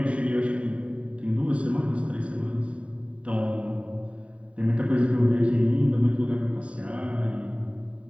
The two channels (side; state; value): left; late; 0.064 ms